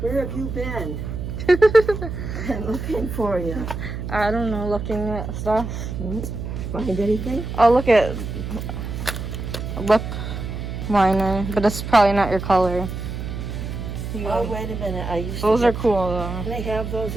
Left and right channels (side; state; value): right; noise; hum, 6 dB below the sound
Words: have you been? I'm looking for you. I don't know, looking at stuff. Find anything? I'll look at lip liner, but it's probably not your color. Oh, wait a minute. I used Those to are get, cool though. Can I have those